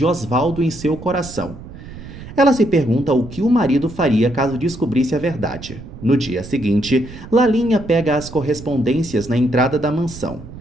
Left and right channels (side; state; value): right; noise; rumble, 14 dB below the sound